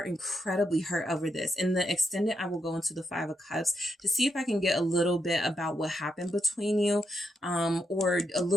incredibly hurt over this. In the extended, I will go into the Five of Cups to see if I can get a little bit about what happened between you, or a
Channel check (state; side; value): normal; both; correlation 0.81